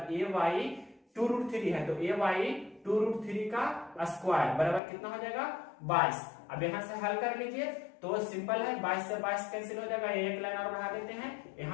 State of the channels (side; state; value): right; drops out; at 4.8 s